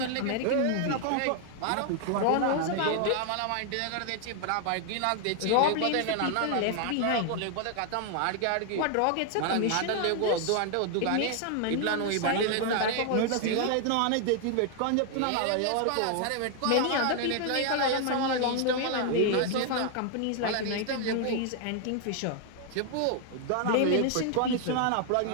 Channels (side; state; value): both; different; correlation 0.00